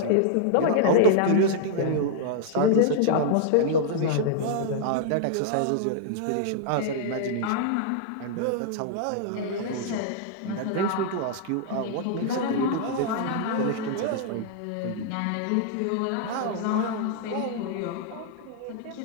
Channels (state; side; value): different; both; correlation -0.01